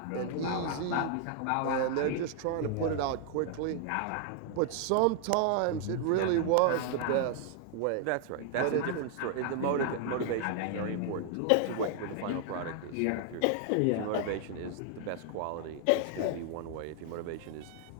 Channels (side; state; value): both; different; correlation 0.00